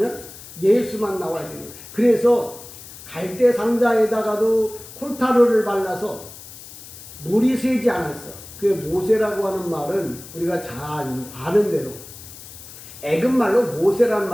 예수만 나와야 되는 거예요. 그래서 갈대 상자에다가도 콜타르를 발라서 물이 새지 않았어. 그 모세라고 하는 말은 우리가 잘 아는 대로 애굽말로 모세라는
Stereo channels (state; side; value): noise; left; hiss, 16 dB below the sound